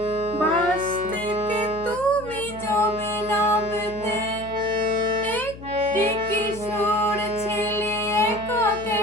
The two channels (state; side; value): noise; left; hum, 15 dB below the sound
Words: বাস থেকে তুমি যাবে নামতে। একটি কিশোর ছেলে একা